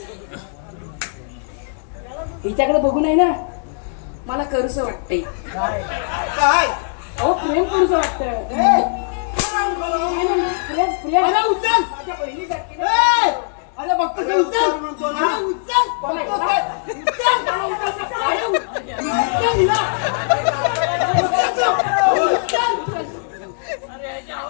हिच्याकडे बघू नाही ना मला करूस वाटतंय. काय अहो प्रेम करूस वाटतंय. प्रेम प्रेम उचल. माझ्या बहिणीसारखी अरे बघतो ते उचल म्हणतो ना. अरे उचल.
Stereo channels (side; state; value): right; silent; 64 dB below the other